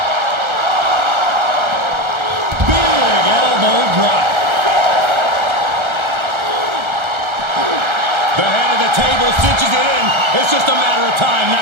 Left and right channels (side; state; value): left; late; 1.3 ms